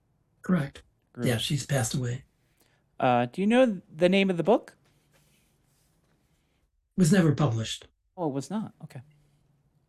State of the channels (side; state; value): both; identical; correlation 1.00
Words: Correct. Yeah, Gruen. she's passed away. Do you know the name of the book? Was never published. Oh, it was not. Okay.